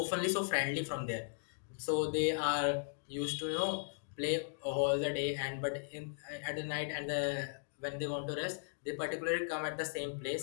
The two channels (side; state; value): right; silent; digital silence